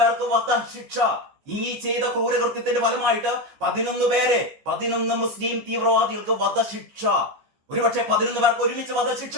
വധശിക്ഷ, ഈ ചെയ്ത ക്രൂരകൃത്യത്തിന്റെ ഫലമായിട്ട് 11 മുസ്ലിം തീവ്രവാദികൾക്ക് വധശിക്ഷ. ഒരുപക്ഷെ 11 പേർക്ക് ഒരുമിച്ച് വധശിക്ഷ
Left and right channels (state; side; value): late; left; 14 ms